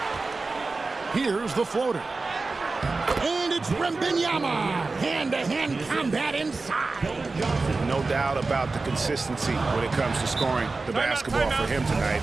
Here's the floater. And it's Wembanyama. Hand-to-hand combat inside. No doubt about the consistency when it comes to scoring the basketball for him tonight.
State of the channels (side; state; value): left; quieter; 3.7 dB